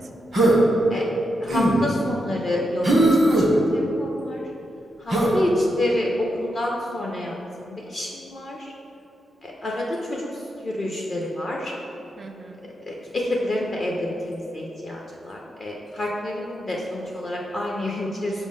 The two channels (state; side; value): normal; both; correlation 0.84